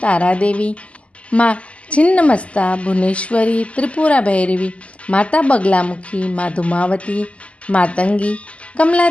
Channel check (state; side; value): late; right; 0.061 ms